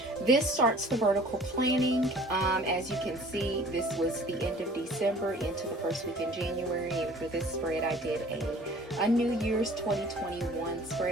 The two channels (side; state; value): both; normal; correlation 0.49